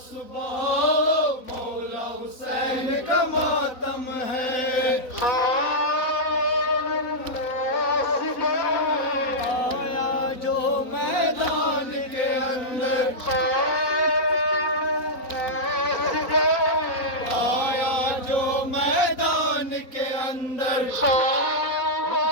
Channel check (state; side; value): late; right; 3.9 ms